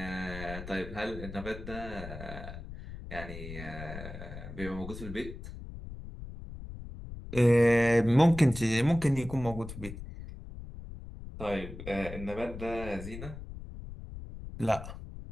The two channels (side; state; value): left; noise; rumble, 11 dB below the sound